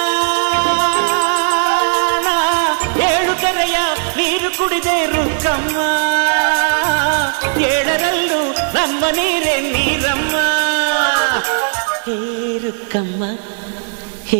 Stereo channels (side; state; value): left; silent; 69 dB below the other